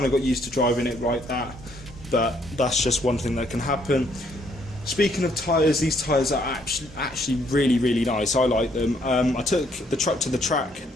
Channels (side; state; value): both; normal; correlation 0.68